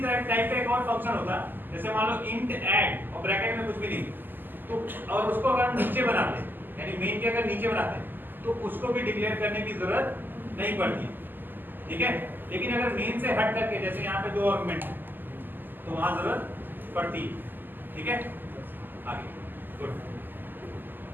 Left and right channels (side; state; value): left; late; 0.090 ms